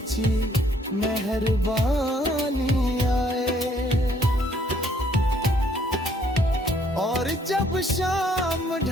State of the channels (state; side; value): normal; both; correlation 0.65